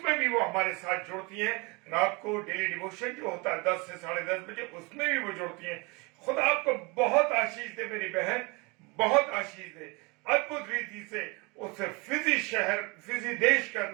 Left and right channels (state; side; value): quieter; left; 27.9 dB